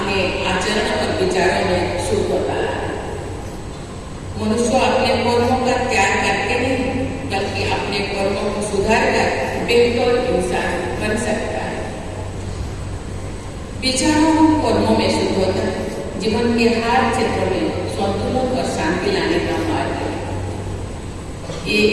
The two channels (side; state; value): both; identical; correlation 1.00